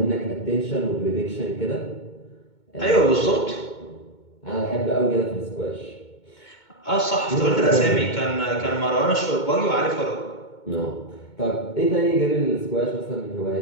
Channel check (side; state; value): right; late; 2.2 ms